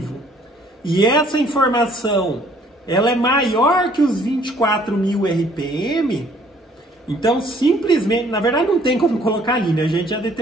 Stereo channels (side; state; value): both; normal; correlation 0.60